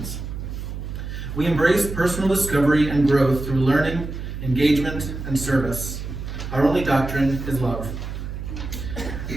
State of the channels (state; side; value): noise; right; hum, 7 dB below the sound